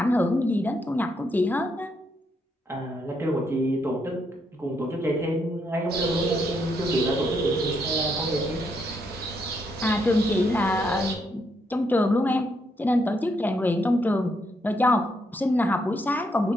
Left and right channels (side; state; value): both; normal; correlation 0.77